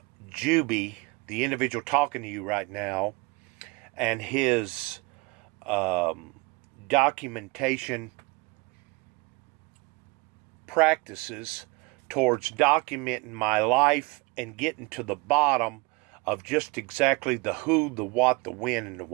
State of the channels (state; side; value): quieter; left; 26.9 dB